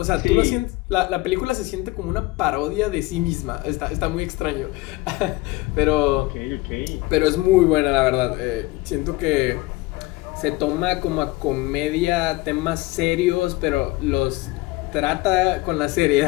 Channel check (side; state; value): right; quieter; 20.3 dB